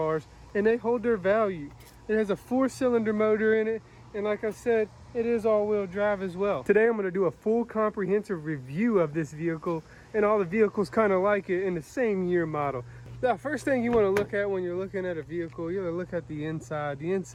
and they hold their value. It has a 4-cylinder motor in it, and like I said, it is all-wheel drive as well. Today I'm going to do a full comprehensive review of this vehicle and all the vehicles kind of like it in the same year model. The first thing you want to look at when you're looking at a vehicle, you want to look at the inside. The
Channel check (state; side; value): identical; both; correlation 1.00